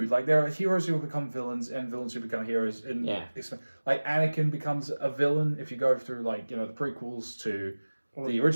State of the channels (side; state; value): both; inverted; correlation -1.00